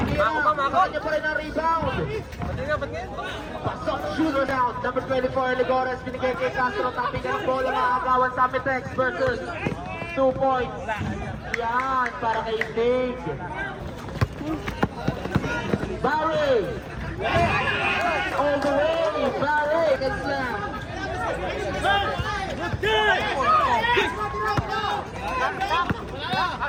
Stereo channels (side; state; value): both; identical; correlation 1.00